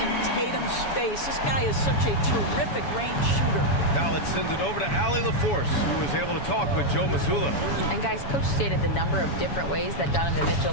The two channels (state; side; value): late; right; 7.1 ms